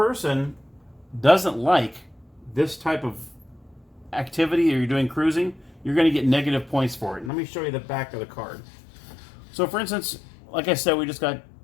doesn't like this type of activity or you're doing cruising, you're going to get negative points for it. And let me show you the back of the card. So for instance, like I said, we just got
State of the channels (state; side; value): drops out; right; at 7.3 s